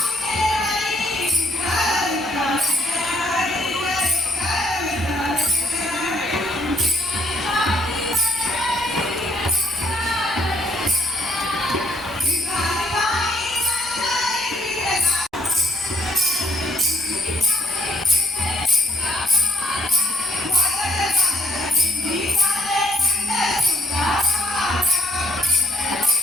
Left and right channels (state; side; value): normal; both; correlation 0.69